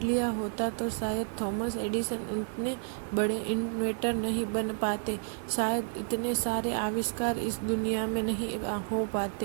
लिया होता तो शायद थॉमस एडिसन इतने बड़े इन्वेंटर नहीं बन पाते, शायद इतने सारे आविष्कार इस दुनिया में नहीं हो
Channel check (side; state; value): left; silent; 57 dB below the other